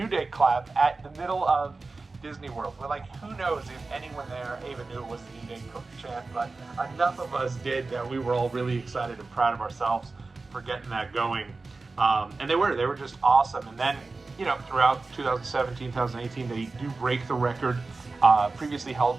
Day clap at the middle of Disney World. We're like, who knows if anyone there even knew it was the New Day chant, but enough of us did that we were all really excited and proud of ourselves for getting that going. And they were just awesome. And then, you know, throughout 2017, 2018, they do break the record previously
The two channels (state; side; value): quieter; left; 3.7 dB